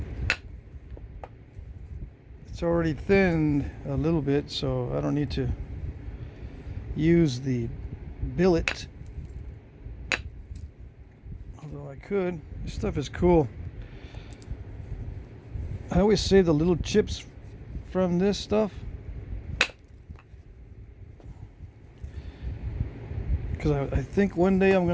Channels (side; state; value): both; identical; correlation 1.00